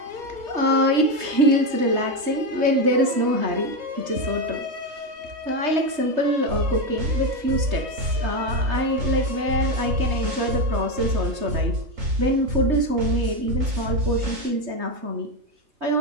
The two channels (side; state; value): left; late; 3.2 ms